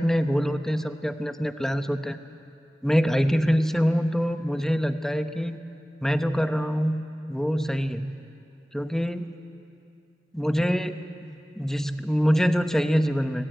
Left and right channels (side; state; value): both; normal; correlation 0.98